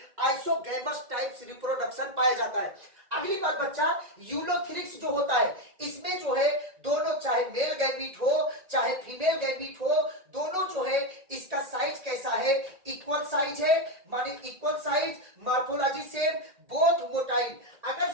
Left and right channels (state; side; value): late; left; 1.8 ms